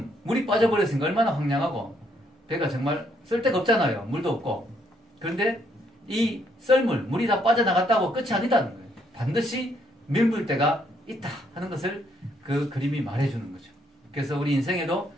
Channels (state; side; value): normal; both; correlation 0.71